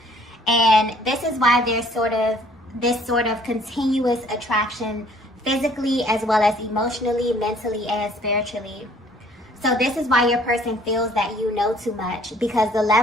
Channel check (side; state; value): both; normal; correlation 0.58